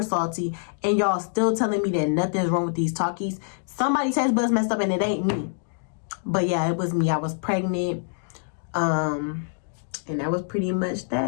salty, and y'all still telling me that nothing's wrong with these Takis. Somebody's taste buds messed up, and it ain't me. But yeah, it was me. I was pregnant, and that was pretty much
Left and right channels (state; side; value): silent; right; digital silence